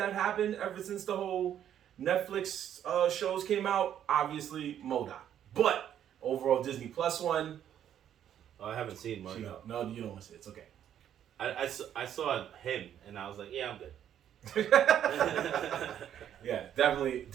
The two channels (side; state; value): left; quieter; 10.1 dB